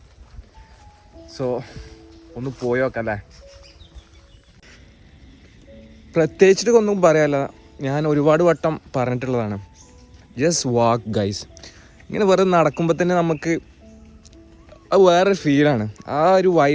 സോ ഒന്ന് പോയി നോക്കല്ലേ. പ്രത്യേകിച്ചിട്ട് ഒന്നും പറയാല്ല, ഞാൻ ഒരുപാട് വട്ടം പറഞ്ഞിട്ടുള്ളതാണ്. Just walk guys. ഇങ്ങനെ വെറുതെ നടക്കുമ്പോൾ തന്നെ നമുക്ക് അത് വേറൊരു ഫീലാണ്. ആ ഒരു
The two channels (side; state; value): both; identical; correlation 1.00